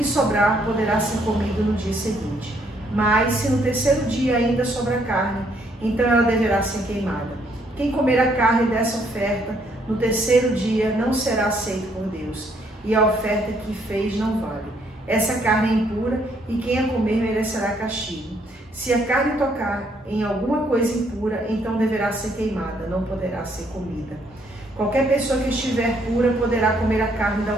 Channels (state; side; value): normal; both; correlation 0.69